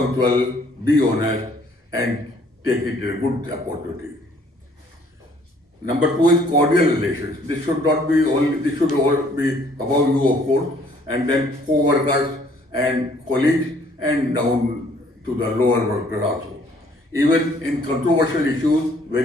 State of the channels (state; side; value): normal; both; correlation 0.61